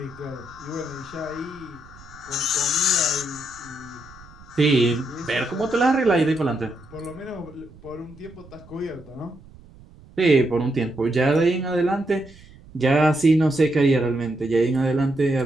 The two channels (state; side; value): noise; right; rumble, 22 dB below the sound